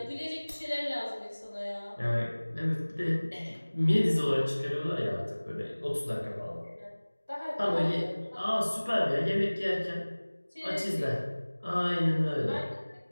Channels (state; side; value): inverted; both; correlation -1.00